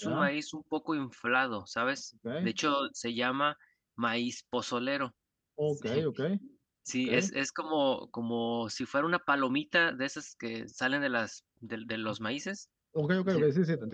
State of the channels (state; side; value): identical; both; correlation 1.00